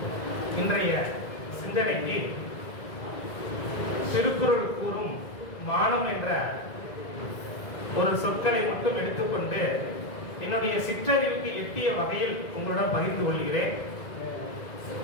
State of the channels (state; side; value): late; right; 2.0 ms